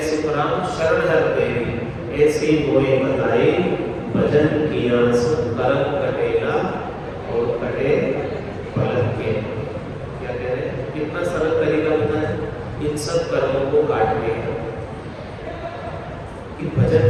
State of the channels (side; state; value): both; identical; correlation 1.00